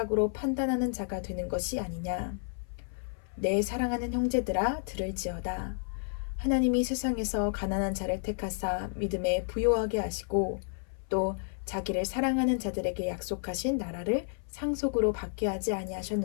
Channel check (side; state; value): right; silent; 56 dB below the other